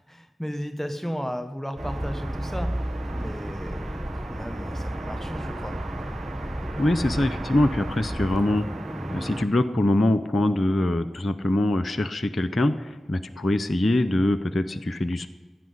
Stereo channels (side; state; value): both; normal; correlation 0.93